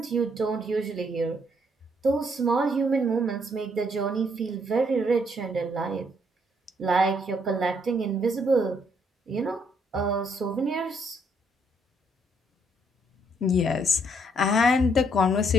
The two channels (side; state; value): both; normal; correlation 0.70